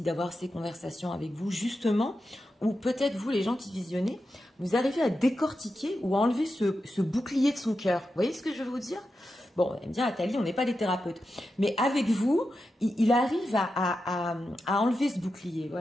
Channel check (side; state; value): both; normal; correlation 0.89